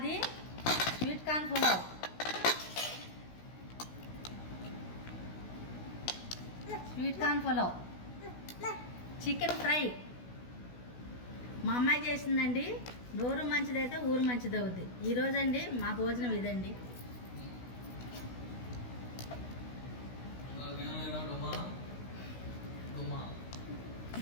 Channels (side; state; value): right; late; 16 ms